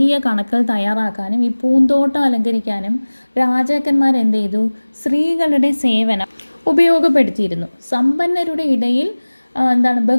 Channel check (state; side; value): inverted; both; correlation -1.00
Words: കണക്കുകൾ തയ്യാറാക്കാനും ഈ പൂന്തോട്ടം അലങ്കരിക്കാനും രാജാക്കന്മാർ എന്ത് ചെയ്തു? സ്ത്രീകളുടെ സേവനം ഉപയോഗപ്പെടുത്തിയിരുന്നു. സമ്പന്നരുടെ ഇടയിൽ